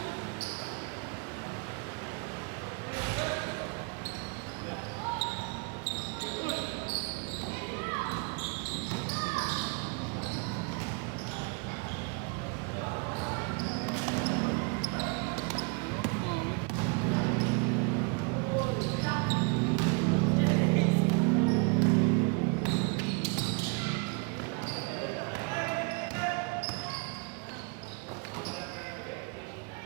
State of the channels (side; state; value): left; quieter; 33.0 dB